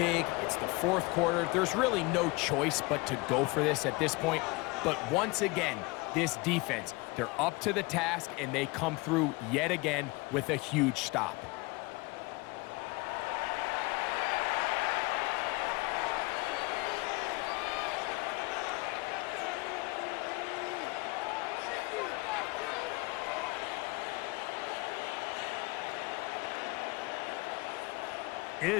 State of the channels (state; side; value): quieter; right; 24.8 dB